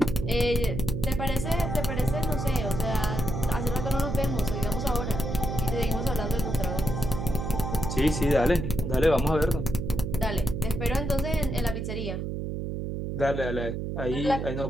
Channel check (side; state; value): right; noise; hum, 3 dB below the sound